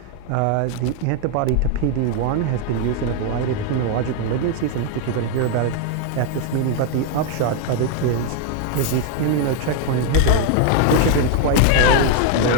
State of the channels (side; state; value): both; different; correlation 0.01